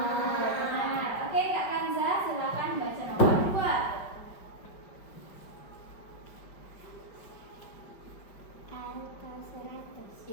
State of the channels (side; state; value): right; late; 5.4 ms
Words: Ya, benar. Oke, Kak Kanza, silakan baca nomor 2. Alto 100.